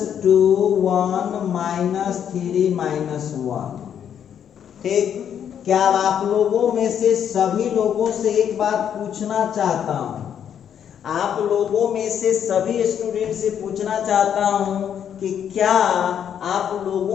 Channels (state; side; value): quieter; right; 8.9 dB